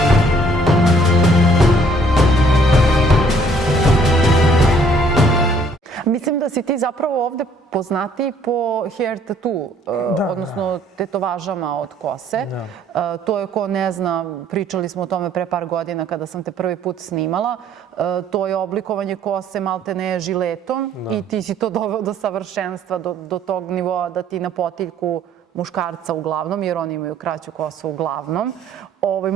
Mislim da si ti zapravo ovde poznatiji po hair tattoo, odnosno tetovažama od kose. To je, ko ne zna, pričali smo o tome pre par godina kada sam te prvi put snimala. To je oblikovanje kose maltene žiletom i ti si to doveo do savršenstva, do tog nivoa da ti na potiljku muškarca uglavnom, jer oni imaju kraću kosu uglavnom,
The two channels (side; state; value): both; normal; correlation 0.61